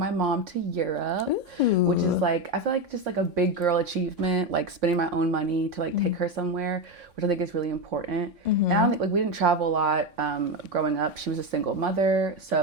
mom to Europe, which is like, I feel like just like a big girl achievement, like spending my own money to like take her somewhere, which I think is really important. Mm-hmm. And I don't think like we didn't travel a lot growing up. She was a single mother.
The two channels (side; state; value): left; late; 3.5 ms